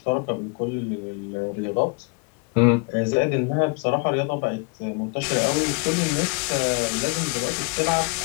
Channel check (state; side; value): quieter; right; 32.8 dB